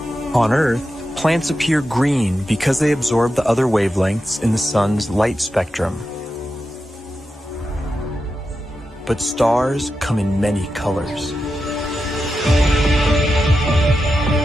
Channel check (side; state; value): both; normal; correlation 0.89